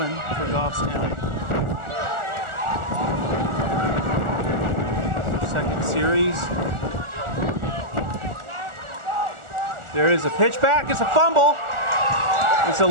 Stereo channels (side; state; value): left; late; 1.4 ms